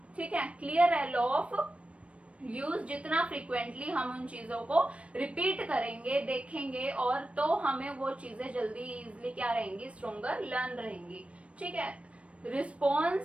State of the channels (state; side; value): late; left; 0.062 ms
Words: ठीक है, क्लियर है लॉ ऑफ यूज। जितना फ्रीक्वेंटली हम उन चीजों को रिपीट करेंगे, देखेंगे, और तो हमें वो चीजें जल्दी इजिली क्या रहेंगी, स्ट्रोंगर लर्न रहेंगी। ठीक है,